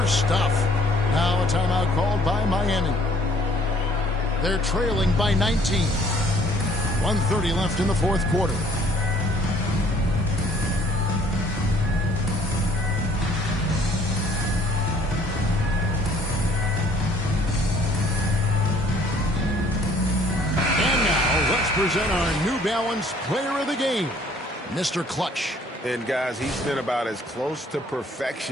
stuff. Now a timeout called by Miami. They're trailing by 19. 1:30 left in the fourth quarter. Present our New Balance Player of the Game, Mr. Clutch. And guys, he's been about as close to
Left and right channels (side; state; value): both; normal; correlation 0.58